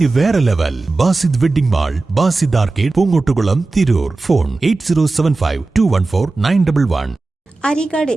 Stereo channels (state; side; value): quieter; left; 3.5 dB